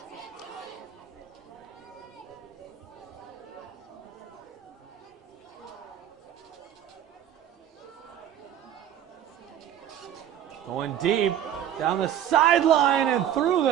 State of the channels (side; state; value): left; quieter; 10.5 dB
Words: Going deep down the sideline and through